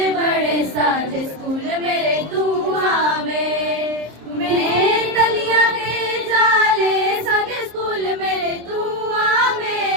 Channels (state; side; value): late; left; 26 ms